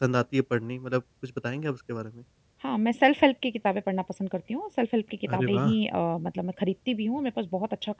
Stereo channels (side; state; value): both; identical; correlation 1.00